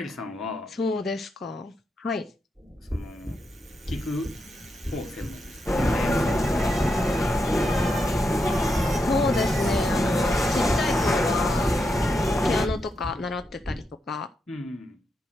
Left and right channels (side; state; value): both; normal; correlation 0.84